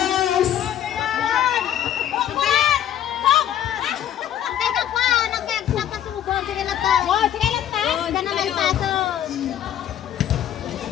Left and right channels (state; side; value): quieter; right; 10.9 dB